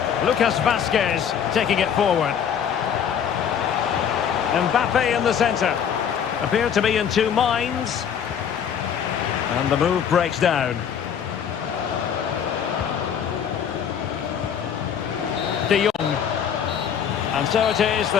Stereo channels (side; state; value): right; quieter; 8.2 dB